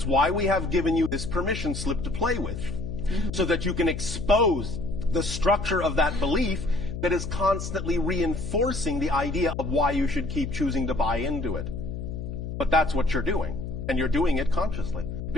why we have given you this permission slip to play with, so that you can expose the structure of that belief that is constantly reinforcing the idea of why you should keep choosing to buy into it. But that's what you're doing, and you're doing it consciously,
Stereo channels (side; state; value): left; noise; hum, 6 dB below the sound